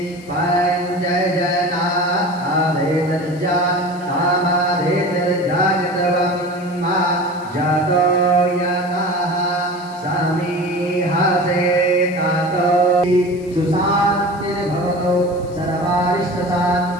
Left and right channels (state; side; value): noise; left; hiss, 27 dB below the sound